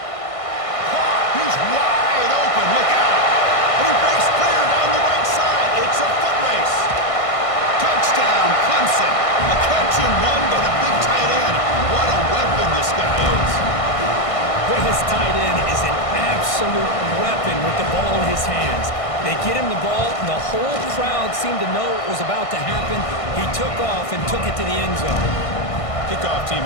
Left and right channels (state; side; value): late; right; 1.6 ms